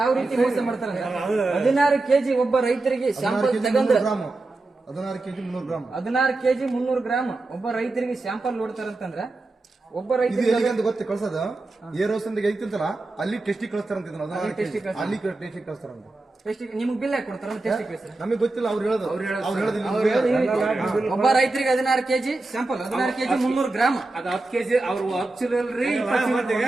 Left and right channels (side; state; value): left; quieter; 3.1 dB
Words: ರೀತಿ ಮೋಸ ಮಾಡ್ತಾರೆ. 16 kg ಒಬ್ಬ ರೈತರಿಗೆ ಸ್ಯಾಂಪಲ್ ತಗೊಂಡ್ 16 kg 300 ಗ್ರಾಮ್ 16 kg 300 ಗ್ರಾಮ್ ಒಬ್ಬ ರೈತರಿಗೆ ಸ್ಯಾಂಪಲ್ ನೋಡ್ತಾರಂತಂದ್ರ ಒಬ್ಬ ರೈತರಿಗೆ ಗೊತ್ತ ಕಳ್ಸೋದು ಏರೋಸ್ ಅಂತ ಐತಿಂತಲ್ಲ, ಅಲ್ಲಿ ಟೆಸ್ಟಿಗೆ ಕಳಿಸ್ತಾರಂತ. ಅಲ್ಲಿ ಟೆಸ್ಟಿಗೆ ಕಳಿಸ್ತಾರಂತ. ನಿಮ್ಗೆ ಬಿಲ್ ಹಾಕಿ ಕೊಡ್ತಾರ? ನಮಗೆ ಗೊತ್ತಿಲ್ಲ, ಅವ್ರು ಹೇಳೋದು. ಒಬ್ಬ ರೈತರಿಗೆ 16 kg ಸ್ಯಾಂಪಲ್ 16 kg 300 ಗ್ರಾಮ್ ಅದು 10 kg ಅವ್ರು 10